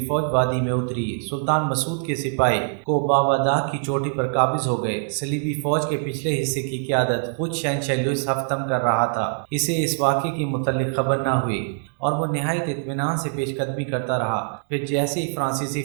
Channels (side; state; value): left; silent; digital silence